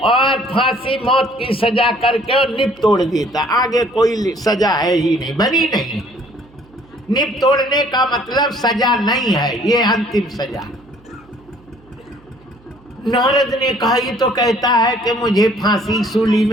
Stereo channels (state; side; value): noise; right; hum, 28 dB below the sound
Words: और फांसी मौत की सजा करके और निप तोड़ देता, आगे कोई सजा है ही नहीं, बनी नहीं। निप तोड़ने का मतलब सजा नहीं है, ये अंतिम सजा। नारद ने कहा ये तो कहता है कि मुझे फांसी सूली